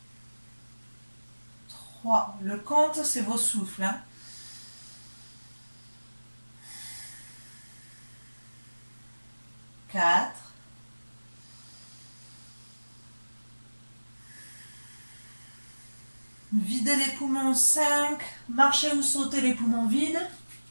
3. Le compte, c'est vos souffles. 4. 'Videz les poumons, 5. Marchez ou sautez les poumons vides.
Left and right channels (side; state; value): both; inverted; correlation -1.00